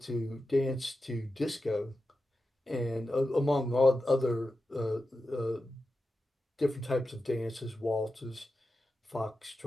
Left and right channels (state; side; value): normal; both; correlation 0.91